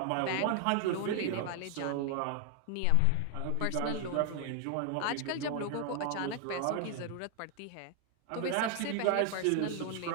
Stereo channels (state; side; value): different; both; correlation 0.00